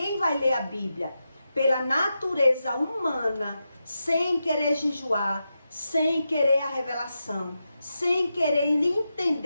vai ler a Bíblia pela natureza humana, sem querer jejuar, sem querer a revelação, sem querer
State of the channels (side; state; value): both; inverted; correlation -0.89